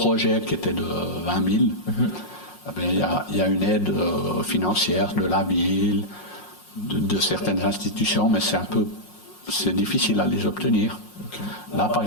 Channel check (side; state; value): right; late; 5.5 ms